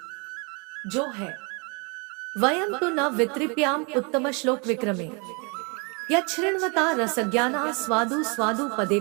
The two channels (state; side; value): quieter; left; 32.9 dB